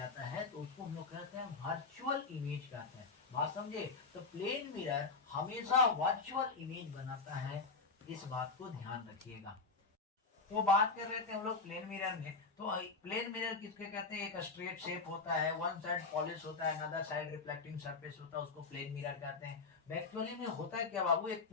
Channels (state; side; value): quieter; right; 4.2 dB